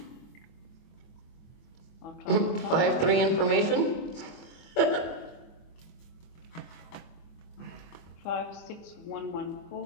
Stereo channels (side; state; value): right; late; 24 ms